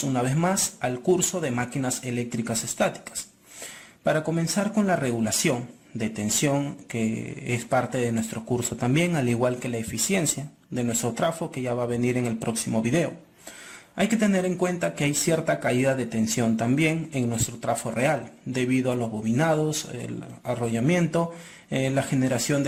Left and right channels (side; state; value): both; identical; correlation 1.00